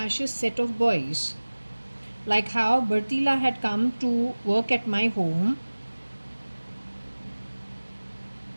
set of boys? Like how Bertila had come to work at my home.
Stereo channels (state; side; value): inverted; both; correlation -1.00